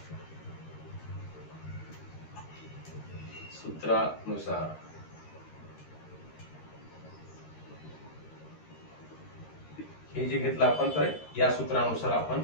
सूत्रानुसार हे जे घेतलं आपण तर या सूत्रानुसार आपण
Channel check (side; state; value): right; late; 13 ms